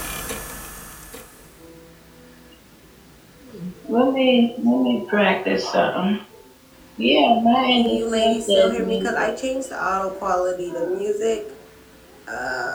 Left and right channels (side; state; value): both; identical; correlation 1.00